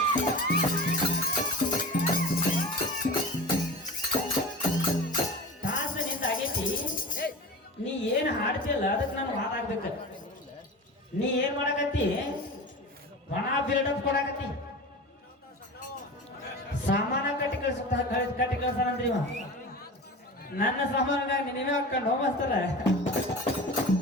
ತಾಸ ನಿಂದ ಆಗೈತಿ, ನೀ ಏನ್ ಹಾಡ್ತಿಲ್ಲ ಅದಕ್ಕೆ ನಾನು ಹಾಡಾಗ್ಬೇಕ. ನೀ ಏನ್ ಮಾಡಕತ್ತಿ, ಒಣ ಬಿಲ್ಡಪ್ ಕೊಡಕತ್ತಿ. ಸಾಮಾನ ಕಟ್ಟಿ ಕಳ್ಸಾನಂದ್ರಿ ಇವ. ನನ್ನ ಸಾಮಾನಾಗ ನೀವೇ ಹಾಕೊಂಡು ಹೋಗ್ತಾರ.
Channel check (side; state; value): both; normal; correlation 0.32